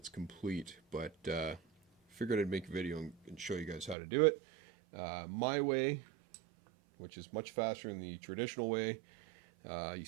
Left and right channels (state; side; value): drops out; left; at 4.0 s